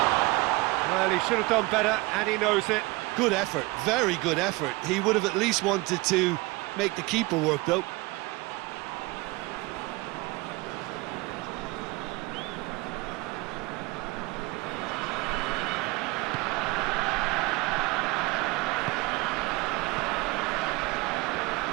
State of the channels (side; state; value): left; quieter; 22.7 dB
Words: Well, he should have done better, and he knows it. Good effort, very good effort. He would have at least wanted to make the keeper work, though.